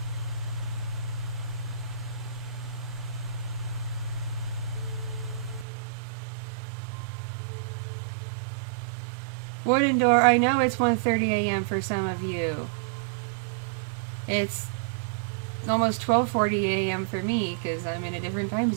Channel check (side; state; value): left; drops out; at 5.7 s